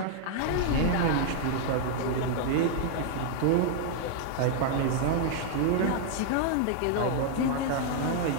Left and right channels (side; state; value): both; different; correlation 0.00